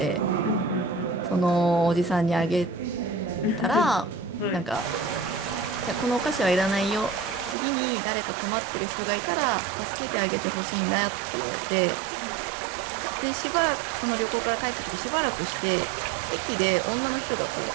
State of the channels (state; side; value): drops out; left; at 7.6 s